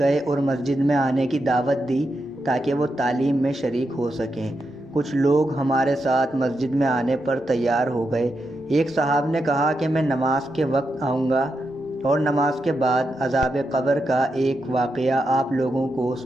اور مسجد میں آنے کی دعوت دی تاکہ وہ تعلیم میں شریک ہو سکیں۔ کچھ لوگ ہمارے ساتھ مسجد میں آنے پر تیار ہو گئے۔ ایک صاحب نے کہا کہ میں نماز کے وقت آؤں گا اور نماز کے بعد عذاب قبر کا ایک واقعہ آپ لوگوں کو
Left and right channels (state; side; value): normal; both; correlation 0.85